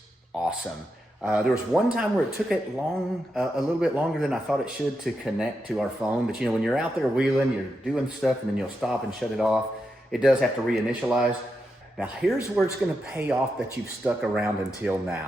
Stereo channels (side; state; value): both; normal; correlation 0.86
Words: awesome. There was one time where it took it a little bit longer than I thought it should to connect to our phone. But you know, when you're out there wheeling, you're doing stuff and then you'll stop and shut it off. It does have to reinitialize. Now here's where it's gonna pay off that you've stuck around until